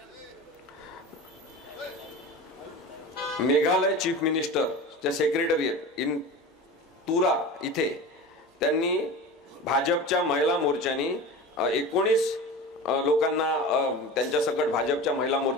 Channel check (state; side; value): normal; both; correlation 0.32